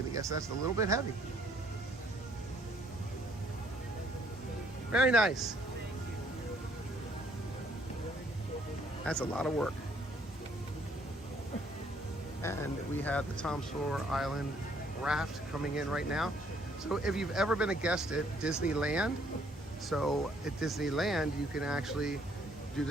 guess that's a little bit heavy. Very nice. That's a lot of work. And we have the Tom Sawyer Island raft coming in right now. So if you've ever been a guest at Disneyland, so at Disneyland you can actually do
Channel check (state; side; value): normal; both; correlation 0.64